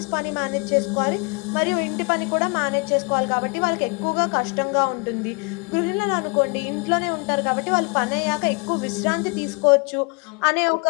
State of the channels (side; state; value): right; quieter; 31.5 dB